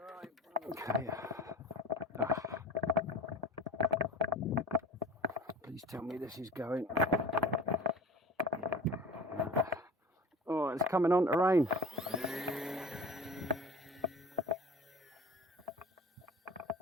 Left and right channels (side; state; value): both; normal; correlation 0.41